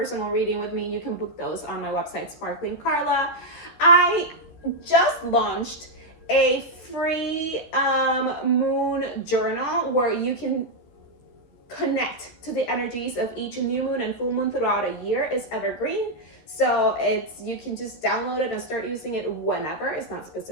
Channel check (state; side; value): late; right; 13 ms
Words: reading with me, you can book those on my website, Sparkling Carla. I just launched a free moon journal where you can connect to the energies of each new moon and full moon throughout a year. It's evergreen, so you can just download it and start using it whenever. It's not